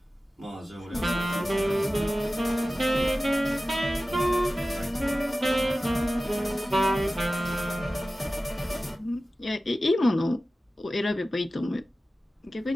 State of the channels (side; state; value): both; normal; correlation 0.95